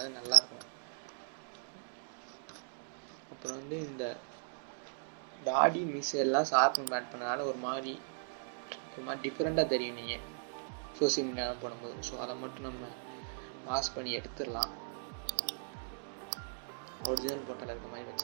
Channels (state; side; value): silent; left; digital silence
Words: நல்லாயிருக்கும். அப்புறம் வந்து இந்த தாடி மிஸ் எல்லாம் ஷார்ப் பண்ணி ஆட் பண்ணனால ஒரு மாதிரி டிஃப்ரெண்ட்டாக தெரியும் நீங்கள் சோசியல் மீடியாவில் போடும்போது. ஸோ அதை மட்டும் நம்ம பாஸ் பண்ணி எடுத்துடலாம். ஒரிஜினல் போட்டால் இருக்க மாதிரி